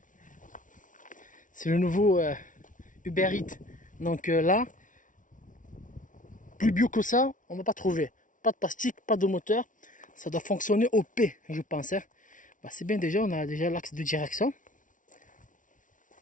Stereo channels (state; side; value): late; right; 0.38 ms